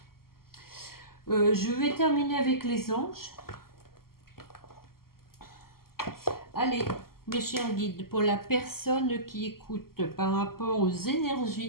Je vais terminer avec les anges. Allez, mes chers guides, pour la personne qui écoute par rapport aux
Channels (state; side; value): late; right; 0.93 ms